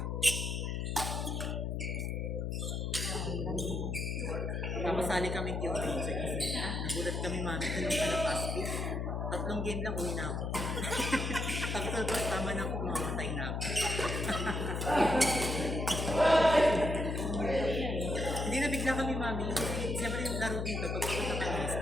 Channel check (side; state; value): left; noise; hum, 1 dB below the sound